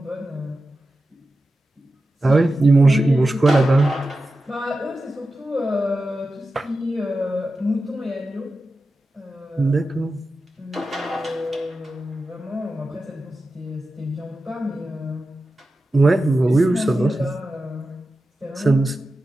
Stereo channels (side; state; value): both; normal; correlation 0.92